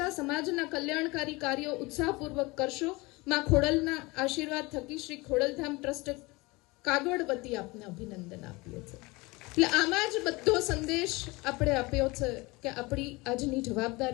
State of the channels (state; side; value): quieter; right; 23.8 dB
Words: સમાજના કલ્યાણકારી કાર્યો ઉત્સાહપૂર્વક કરશો. માં ખોડલના આશીર્વાદ થકી શ્રી ખોડલધામ ટ્રસ્ટ કાગવડ વતી આપને અભિનંદન આપીએ છીએ. એટલે આમાં જ બધો સંદેશ આપણે આપ્યો છે કે આપણી આજની